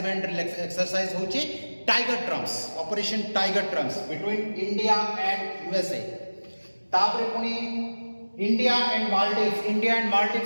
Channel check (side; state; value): both; inverted; correlation -1.00